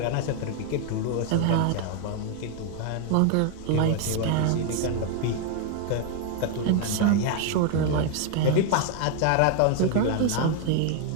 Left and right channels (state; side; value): different; both; correlation 0.00